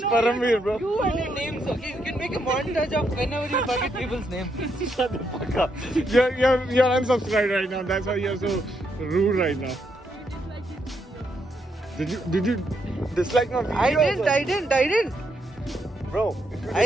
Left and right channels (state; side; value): normal; both; correlation 0.78